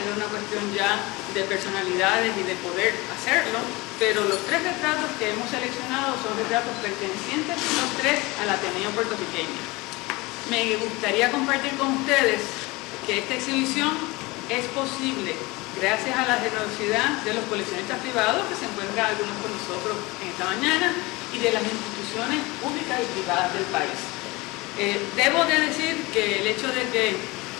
una cuestión ya de personalidades y de poder hacerlo, pero los tres retratos que hemos seleccionado son retratos pertenecientes los tres al Ateneo puertorriqueño. Me gustaría compartir con ustedes que esta exhibición es posible gracias a la generosidad de los coleccionistas privados, que se encuentran algunos con nosotros en esta mañana, y de las instituciones públicas y privadas del país. Debo de decir que el hecho de que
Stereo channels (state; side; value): quieter; right; 23.1 dB